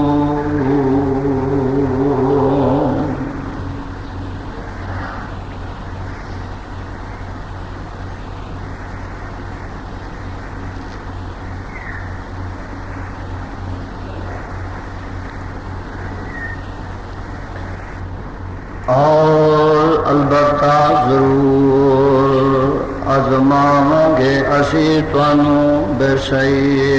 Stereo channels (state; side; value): identical; both; correlation 1.00